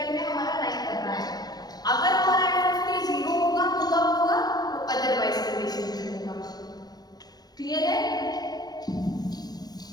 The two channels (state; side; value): late; right; 0.19 ms